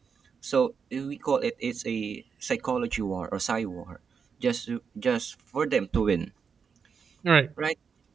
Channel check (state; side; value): quieter; left; 6.1 dB